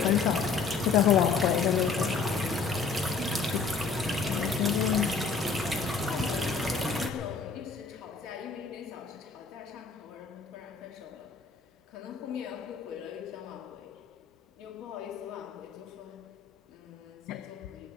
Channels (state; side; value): quieter; right; 5.0 dB